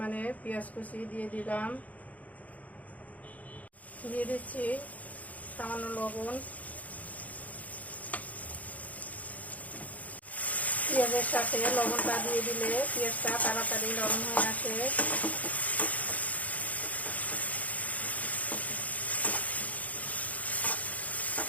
পেঁয়াজ কুচি দিয়ে দিলাম। দিয়ে দিচ্ছি সামান্য লবণ। পেঁয়াজের সাথে লবণটা দিয়ে দিলে পেঁয়াজটা তাড়াতাড়ি নরম হয়ে আসে।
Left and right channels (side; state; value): right; late; 0.073 ms